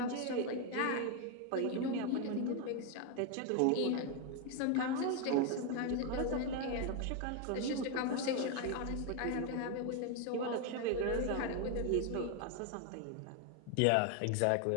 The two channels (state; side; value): different; both; correlation 0.01